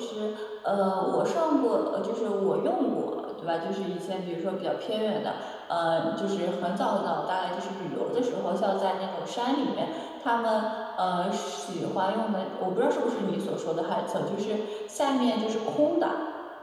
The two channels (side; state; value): both; identical; correlation 1.00